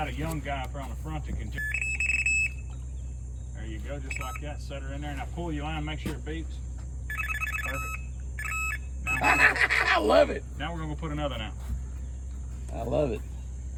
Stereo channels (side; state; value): both; identical; correlation 1.00